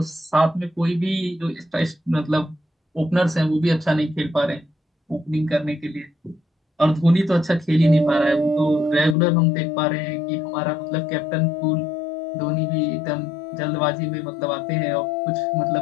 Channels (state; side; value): drops out; right; at 9.2 s